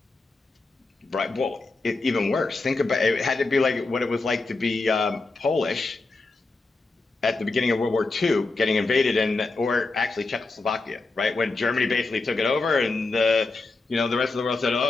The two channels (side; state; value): right; quieter; 3.5 dB